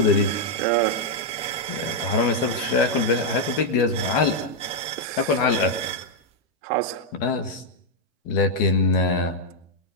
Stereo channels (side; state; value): both; normal; correlation -0.01